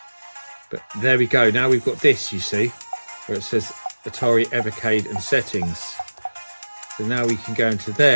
but there we go. Now we've got this, you see, where it says Atari Evercade and settings. So now we can go into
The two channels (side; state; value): both; inverted; correlation -1.00